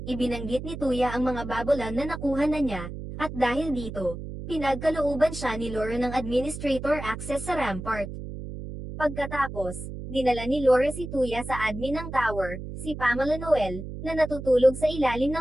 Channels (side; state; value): right; noise; hum, 9 dB below the sound